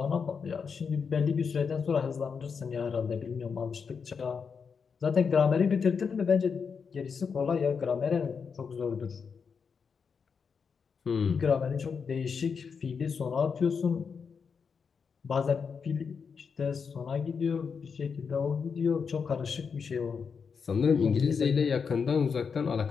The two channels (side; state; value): right; quieter; 5.9 dB